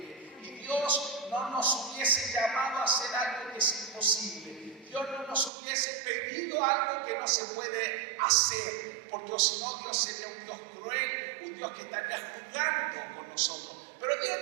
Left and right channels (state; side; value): drops out; left; at 5.5 s